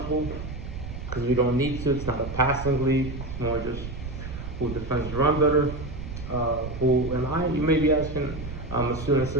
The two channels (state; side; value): noise; right; rumble, 8 dB below the sound